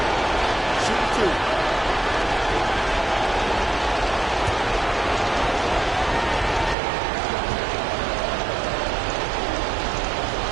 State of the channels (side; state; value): left; drops out; at 6.8 s